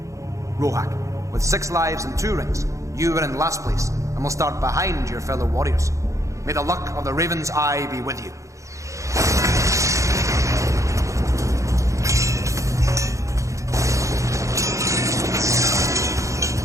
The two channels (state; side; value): late; left; 0.15 ms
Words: Rohak, with 6 lives and 2 rings, you are in last place and will start behind your fellow warriors. May the luck of the Raven's Eye be with you.